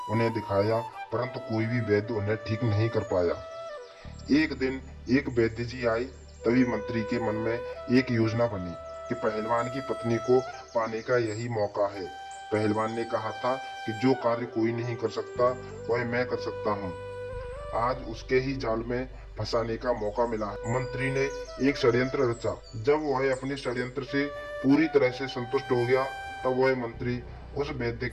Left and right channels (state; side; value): identical; both; correlation 1.00